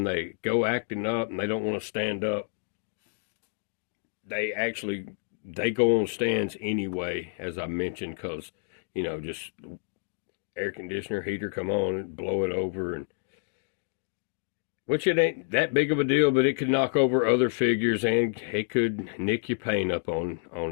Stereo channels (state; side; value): silent; right; digital silence